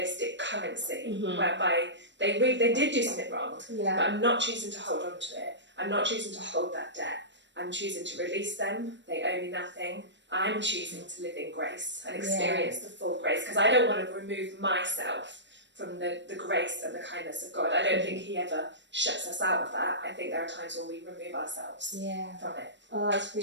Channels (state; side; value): late; left; 0.53 ms